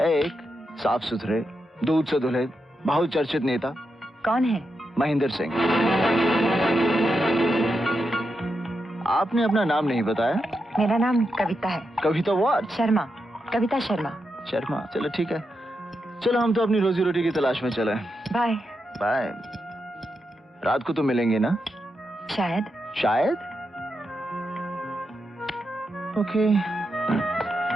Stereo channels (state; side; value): normal; both; correlation 0.86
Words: साफ सुथरे, दूध से धुले, बहुत चर्चित नेता। कौन है? महेंद्र सिंह। आपने अपना नाम नहीं बताया। मेरा नाम कविता है। कविता व्हाट? शर्मा, कविता शर्मा। शर्मा, चलो ठीक है। चलो हम तो अपनी रोजी रोटी की तलाश में चले। बाय। बाय। रात को तो मिलेंगे ना? शायद। शायद? ओके।